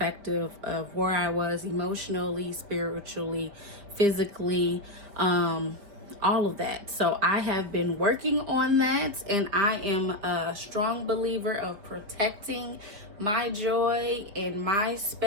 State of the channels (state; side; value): late; left; 5.0 ms